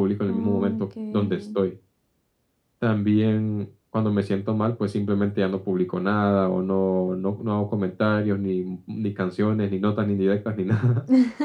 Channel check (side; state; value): both; identical; correlation 1.00